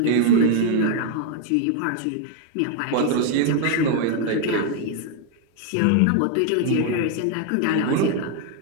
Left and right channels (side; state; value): both; different; correlation 0.00